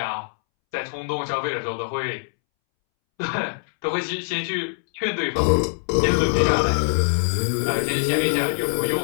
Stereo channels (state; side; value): silent; right; 63 dB below the other